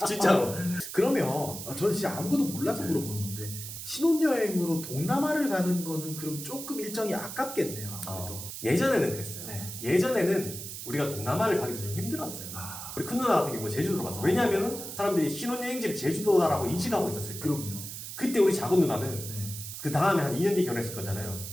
진짜로. 그러면 저는 진짜 아무것도 몰라서 물어보는 건데 신혼여행으로 동남아를 가는 거는 그럼 조금 일정이 아깝겠네요. 아무래도. 예전에는 그랬어요. 네. 예전에는 우리가 동남아를 가기도 좀 힘들었어요. 우리 큰 누나 같은 경우 제주도로 갔어. 왜냐하면 사람들이 신혼여행지를 제주도다라고 인식하고 있었을 거예요. 그럼요. 그때 우리 작은 누나는 네. 그 다음에 한 2년 뒤에 결혼했을 거잖아요.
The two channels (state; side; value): noise; right; hiss, 9 dB below the sound